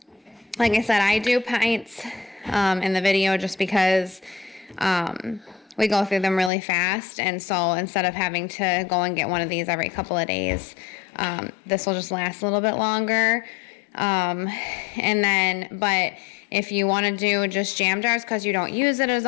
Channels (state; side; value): drops out; right; at 6.5 s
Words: I said, I do pints in the video just because we go through them really fast, and so instead of having to go and get one of these every couple of days, this will just last a little bit longer. And then, but if you want to do just jam jars because you don't use it as